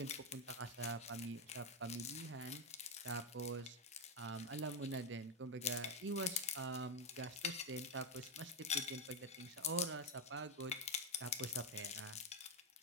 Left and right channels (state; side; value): normal; both; correlation 0.07